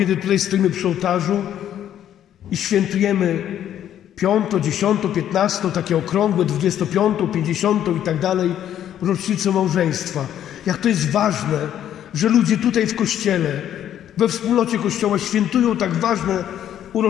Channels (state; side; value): quieter; right; 10.7 dB